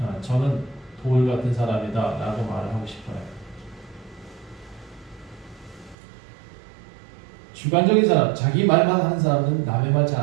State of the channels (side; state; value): left; drops out; at 6.0 s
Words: 저는 돌 같은 사람이다 라고 말을 하고 싶어요. 주관적인 사람, 자기 말만 하는 사람은 남의 말 잘